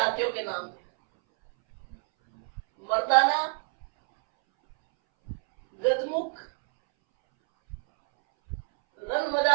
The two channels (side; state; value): left; silent; 60 dB below the other